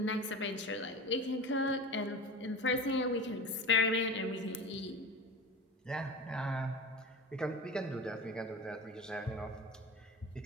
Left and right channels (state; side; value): normal; both; correlation 0.31